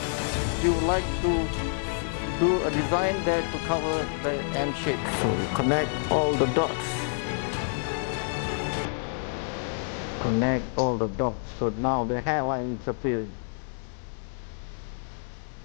You would like to do a design there to cover the M shape. So we connect all the dots. Connect all the dots. So now the hairline is appearing.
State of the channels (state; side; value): silent; right; digital silence